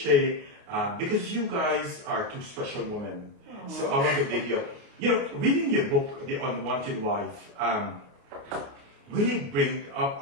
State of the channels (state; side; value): late; left; 29 ms